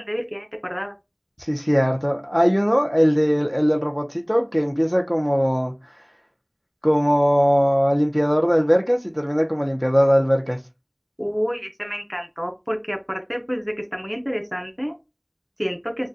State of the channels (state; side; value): identical; both; correlation 1.00